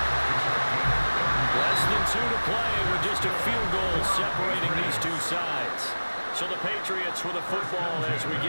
Less than 2 to play with just a field goal separating these two sides. So the Patriots with a football as we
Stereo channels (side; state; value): both; inverted; correlation -1.00